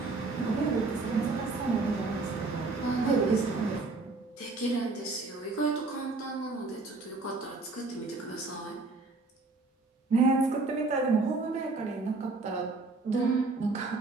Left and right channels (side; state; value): left; quieter; 3.6 dB